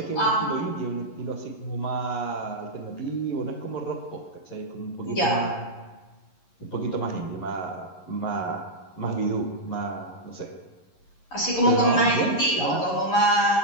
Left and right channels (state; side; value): late; right; 11 ms